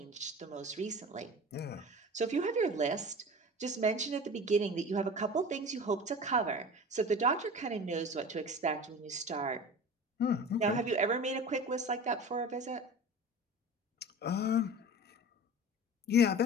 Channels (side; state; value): both; normal; correlation 0.36